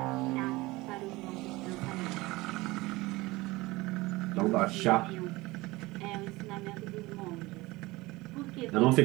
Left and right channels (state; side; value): quieter; left; 21.0 dB